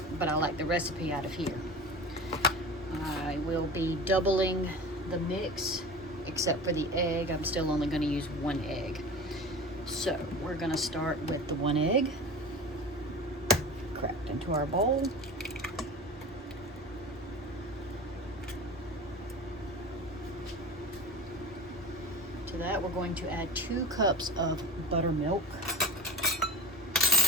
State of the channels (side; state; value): both; normal; correlation 0.33